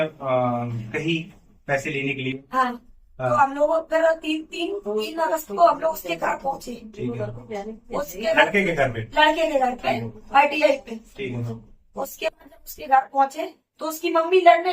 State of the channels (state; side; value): identical; both; correlation 1.00